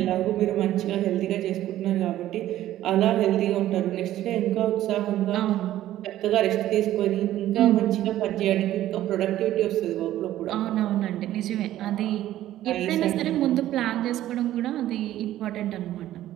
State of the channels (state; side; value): quieter; left; 13.5 dB